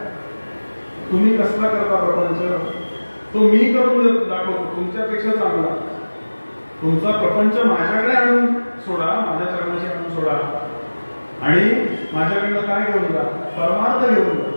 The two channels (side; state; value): both; inverted; correlation -1.00